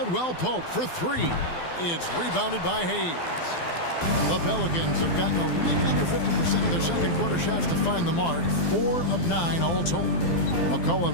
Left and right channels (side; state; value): right; late; 12 ms